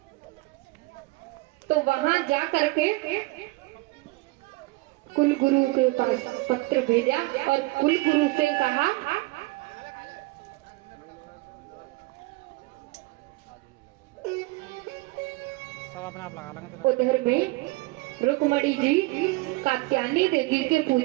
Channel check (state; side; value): quieter; left; 22.8 dB